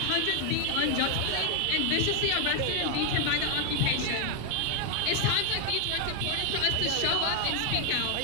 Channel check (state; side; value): different; both; correlation 0.00